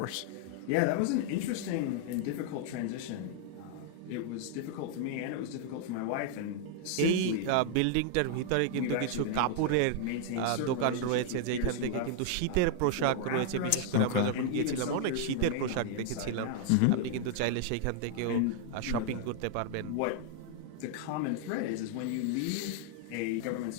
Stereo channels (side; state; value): both; different; correlation 0.00